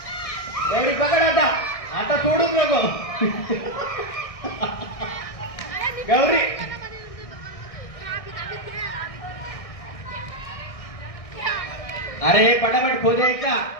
गौरी पकड आता. आता सोडूच नको. गौरी अरे पटापट खोदे का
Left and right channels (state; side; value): late; right; 1.6 ms